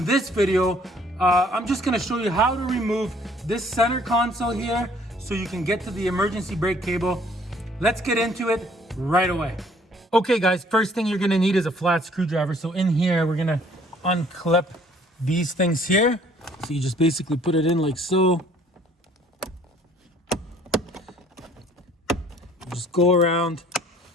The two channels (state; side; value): normal; both; correlation 0.59